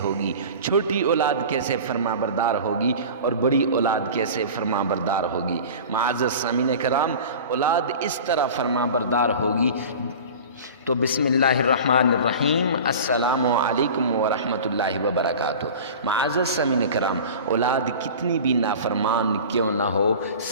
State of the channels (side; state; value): both; inverted; correlation -0.37